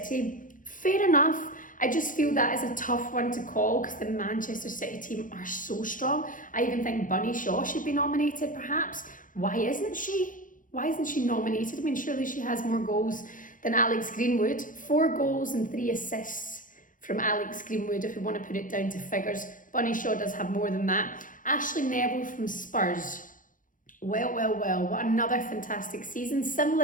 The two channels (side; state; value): right; late; 0.39 ms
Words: Fair enough. I just feel that is a tough one to call because the Manchester City team are so strong. I even think Bunny Shaw should be nominated perhaps. Why isn't she? Why isn't she nominated? I mean, surely she has more goals than Alex Greenwood. 4 goals and 3 assists from Alex Greenwood, if we want to put it down to figures. Bunny Shaw does have more than that. Ashleigh Neville from Spurs. Well, what another fantastic season.